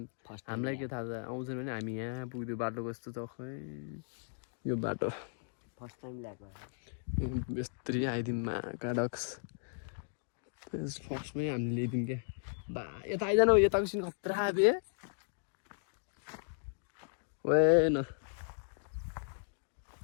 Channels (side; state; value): right; silent; digital silence